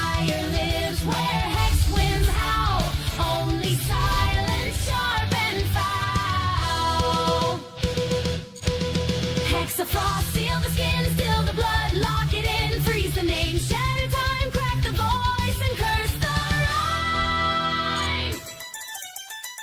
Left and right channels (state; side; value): identical; both; correlation 1.00